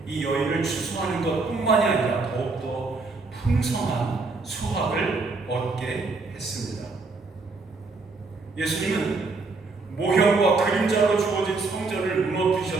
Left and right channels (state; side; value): quieter; left; 3.8 dB